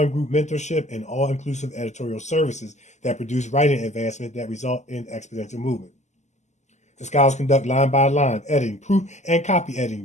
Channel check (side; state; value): right; late; 0.33 ms